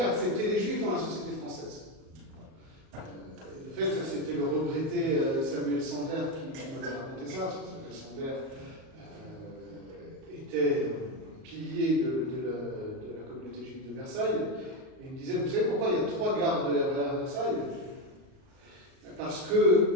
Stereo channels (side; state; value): left; late; 38 ms